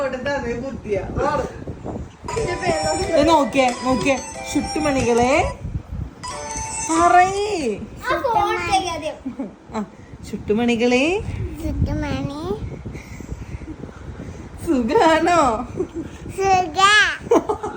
ബുദ്ധിയ നോക്കിയേ നോക്കിയേ. ചുട്ടുമണികളെ പറയേ. ചുട്ടുമണികളെ സുഖാണോ?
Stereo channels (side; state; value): both; identical; correlation 1.00